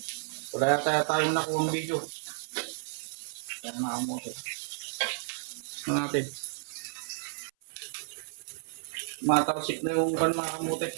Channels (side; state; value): left; silent; 57 dB below the other